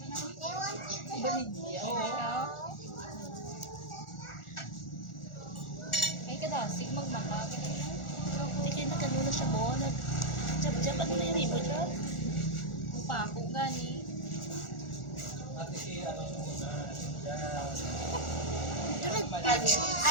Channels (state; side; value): late; right; 1.4 ms